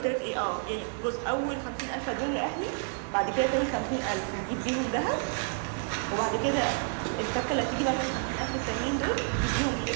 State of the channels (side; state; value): left; silent; 58 dB below the other